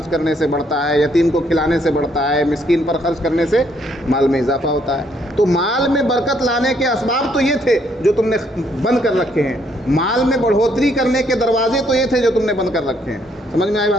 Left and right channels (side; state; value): both; normal; correlation 0.70